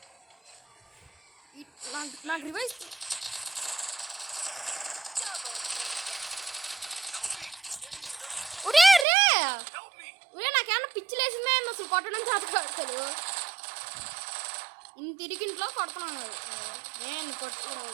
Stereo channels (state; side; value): drops out; left; at 9.1 s